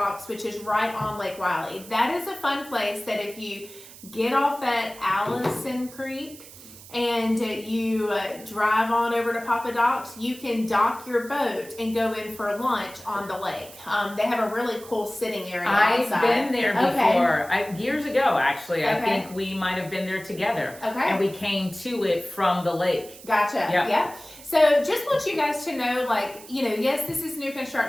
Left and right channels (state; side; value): noise; right; hiss, 18 dB below the sound